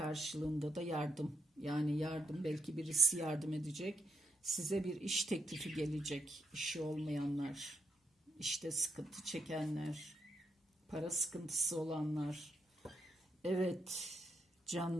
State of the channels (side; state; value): both; normal; correlation 0.80